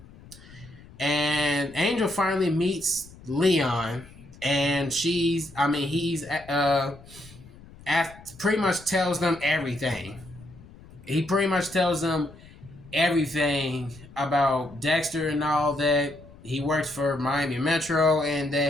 And Angel finally meets Leon, and he's pretty much tells them everything. He pretty much tells them everything about Dexter and all that. He works for Miami Metro and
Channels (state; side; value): noise; left; rumble, 21 dB below the sound